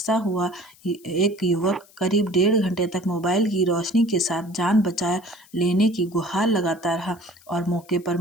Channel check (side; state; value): left; noise; hiss, 26 dB below the sound